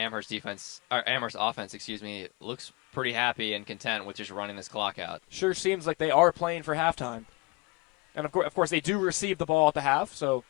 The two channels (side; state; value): right; quieter; 24.7 dB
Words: Amherst offense, looks pretty happy and content with just running this clock out. Sure seems like they are playing for halftime. And of course they do receive the ball at the half, so